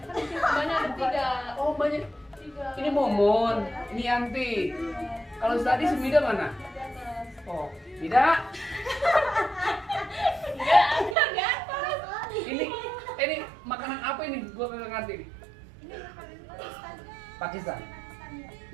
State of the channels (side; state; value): left; drops out; at 11.2 s